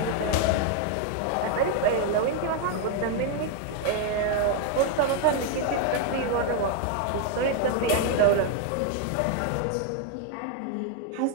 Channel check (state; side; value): different; both; correlation 0.01